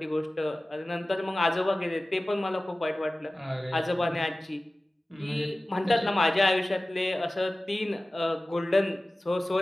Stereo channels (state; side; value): normal; both; correlation 0.97